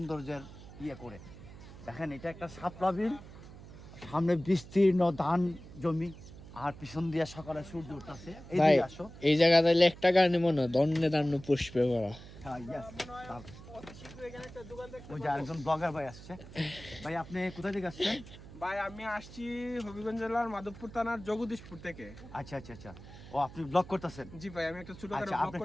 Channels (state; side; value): noise; right; hum, 16 dB below the sound